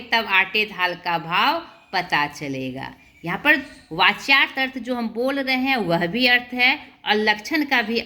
तब आटे दाल का भाव पता चलेगा। यहाँ पर वाच्यार्थ अर्थ जो हम बोल रहे हैं वह भी अर्थ है और लक्षण का भी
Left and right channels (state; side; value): identical; both; correlation 1.00